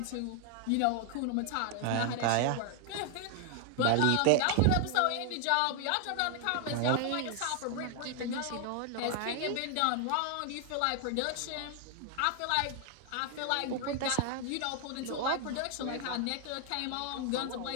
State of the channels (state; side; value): different; both; correlation 0.00